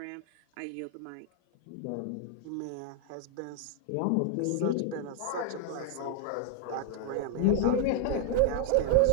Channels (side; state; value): both; different; correlation 0.00